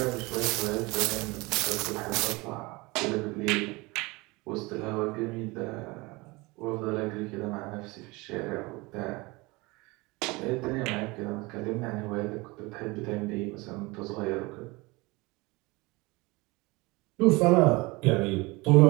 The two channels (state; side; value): quieter; left; 24.1 dB